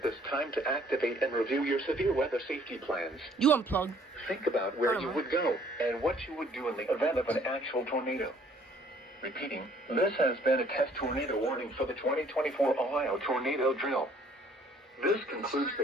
this time to activate and review your severe weather safety plans. You unplug. Think about where you would go and what you would do in the event of an actual tornado. Repeating, this has been a test tornado warning for the 2024 Ohio Tornado Drill. This concludes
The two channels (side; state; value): both; normal; correlation 0.60